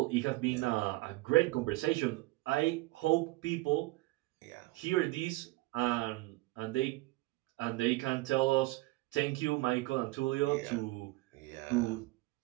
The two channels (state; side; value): quieter; left; 20.5 dB